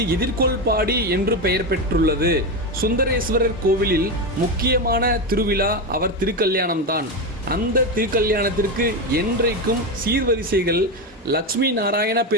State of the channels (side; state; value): both; normal; correlation 0.14